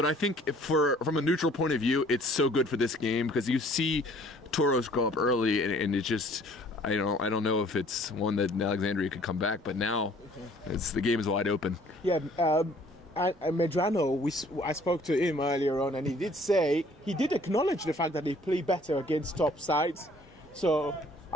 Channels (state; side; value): normal; both; correlation 0.56